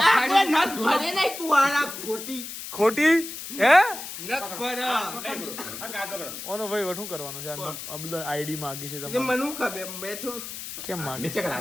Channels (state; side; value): noise; left; hiss, 9 dB below the sound